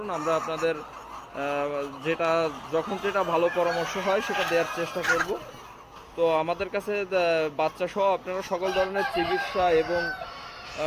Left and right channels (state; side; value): identical; both; correlation 1.00